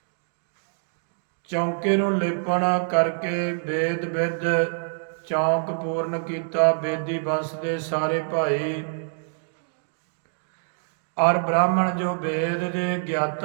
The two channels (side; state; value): left; silent; digital silence